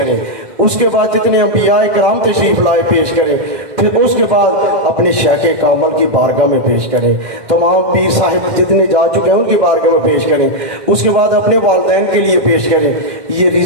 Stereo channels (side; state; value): left; late; 2.1 ms